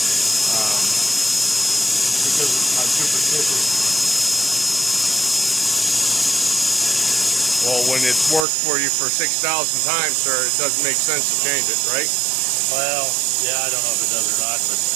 because I'm superstitious. Well, when it's worked for you for 6,000 times, sir, it doesn't make sense to change it, right? Well, yeah, I don't know if it does or not, but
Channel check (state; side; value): drops out; left; at 8.5 s